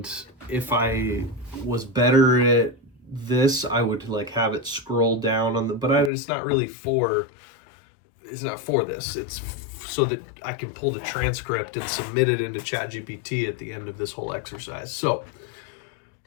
if I was better at this, I would have it scroll down on the, but it's not really for, it's not for this. It's so that I can pull the transcript and submit it into ChatGPT at the end of this whole exercise. So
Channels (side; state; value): right; drops out; at 6.1 s